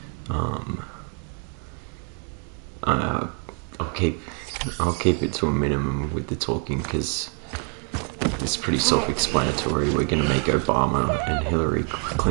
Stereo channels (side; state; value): left; quieter; 39.3 dB